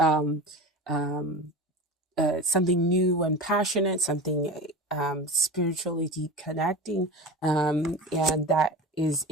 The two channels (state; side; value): normal; both; correlation 0.30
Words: new and passionate, something spiritually deep connecting, and that is